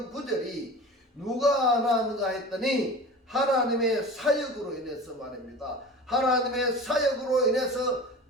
구절이 누가 낳았는가 했더니 하나님의 사역으로 인해서 말입니다. 하나님의 사역으로 인해서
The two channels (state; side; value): normal; both; correlation 0.36